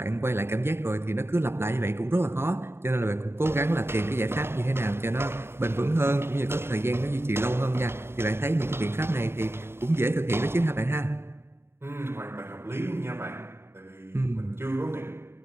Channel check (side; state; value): left; late; 0.12 ms